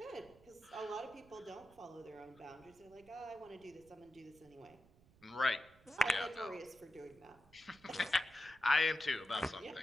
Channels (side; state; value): right; noise; rumble, 27 dB below the sound